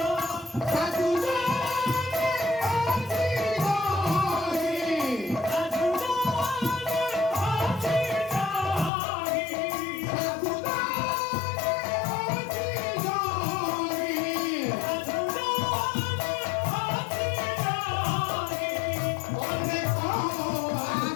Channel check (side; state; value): right; drops out; at 8.9 s